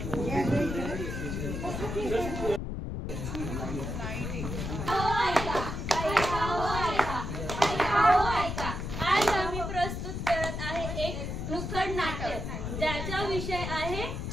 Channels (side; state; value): left; noise; rumble, 4 dB below the sound